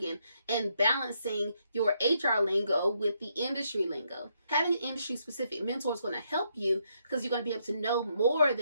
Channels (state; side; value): inverted; both; correlation -0.76